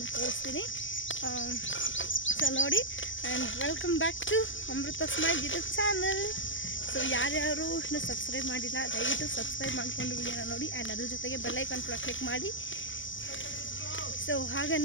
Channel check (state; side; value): late; right; 0.56 ms